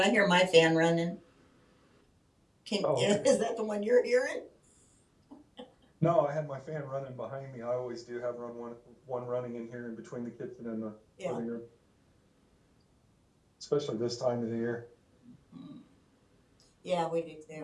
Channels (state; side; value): identical; both; correlation 1.00